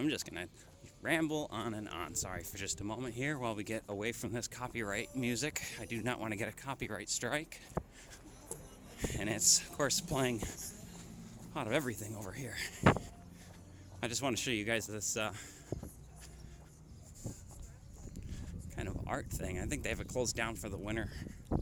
just gonna ramble on and on. Sorry for just a moment here while we get away from this copyright music. I do not want to get a copyright strike. And it's, of course, playing a lot of everything over here. I just want to show you guys this kind of art thing. I think they have it closed down for the winter.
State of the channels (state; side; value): identical; both; correlation 1.00